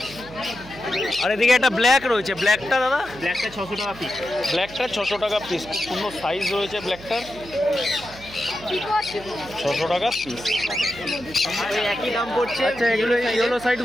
আর এদিকে একটা ব্ল্যাক রয়েছে। ব্ল্যাকটা দাদা? ব্ল্যাকটা 600 টাকা পিস। ব্ল্যাকটা 600 টাকা পিস। খুব সুন্দর সাইজ রয়েছে ব্ল্যাকটার। 600 টাকা পিস। আর এই একই দাম পড়ছে। আচ্ছা, এগুলো ইয়েলো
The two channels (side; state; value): right; noise; hum, 18 dB below the sound